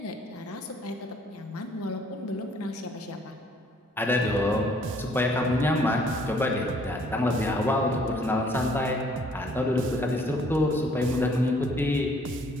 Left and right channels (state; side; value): normal; both; correlation 0.61